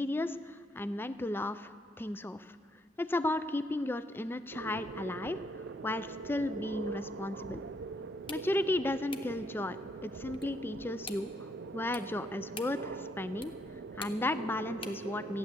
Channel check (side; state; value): both; normal; correlation 0.72